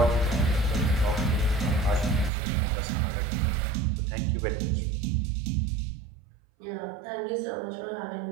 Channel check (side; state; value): left; drops out; at 2.3 s